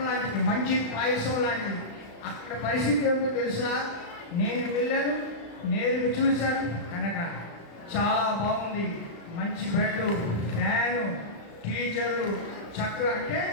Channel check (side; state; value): right; late; 35 ms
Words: లాంటిది, మంచి పాయసం లాంటిది. అక్కడ పరిస్థితి ఏమిటో తెలుసా? నేను వెళ్ళాను, నేను చూశాను కనుక చాలా బాగుంది. మంచి బెడ్, ఫ్యాను, టీచర్లు చక్కగా. అంటే